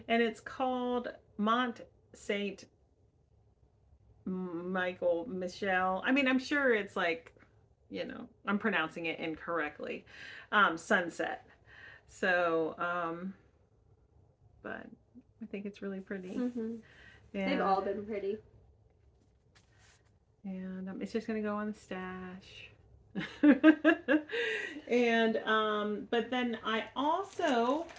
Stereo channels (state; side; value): identical; both; correlation 1.00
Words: And it's called Mont Saint Michael Michelle. I mean, I'm sure it's like, I'm pronouncing it incorrectly. Sunset. So, but I think it's really pretty. Mm-hmm. They've all been pretty. And it's just gonna go on the stash. And but then I also